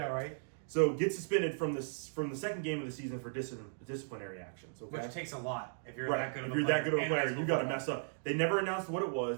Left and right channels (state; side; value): silent; left; digital silence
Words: right. So gets suspended from the second game of the season for disciplinary actions. Okay. Which takes a lot if you're Right. that good of If a you're player. that good of a in player, high you school got to football. mess up. They never announced what it